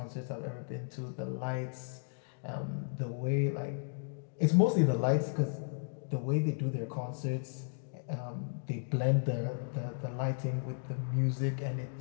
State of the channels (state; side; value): silent; right; digital silence